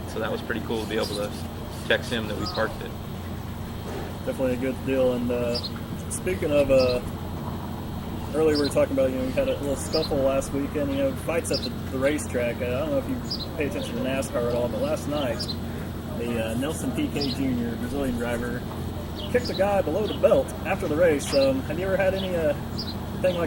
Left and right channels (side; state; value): both; identical; correlation 1.00